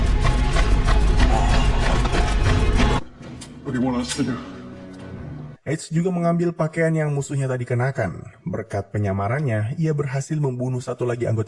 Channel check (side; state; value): both; identical; correlation 1.00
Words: What do you want us to do? Edge juga mengambil pakaian yang musuhnya tadi kenakan. Berkat penyamarannya, ia berhasil membunuh satu lagi